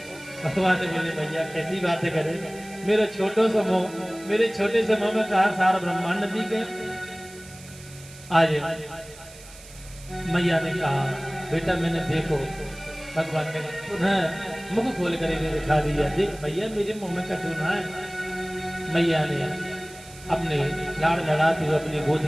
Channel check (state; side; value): noise; right; hiss, 19 dB below the sound